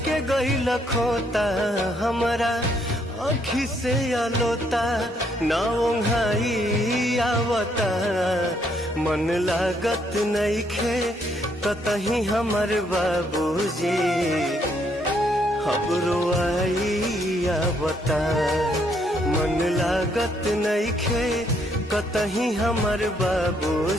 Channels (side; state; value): both; normal; correlation 0.71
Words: के गईल खोता हमारा आँखी से आलोता ना ओंघाई आवता मन लागत नइखे कतही हमर बाबूजी खबरो आई आवता मन लागत नइखे कतही हमर